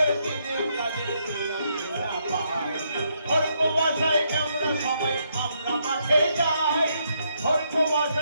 দিনে কাজের দিলাম না পাই। ভোর কুয়াশায় আমরা সবাই আমরা মাঠে যাই ভোর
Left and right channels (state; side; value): inverted; both; correlation -0.76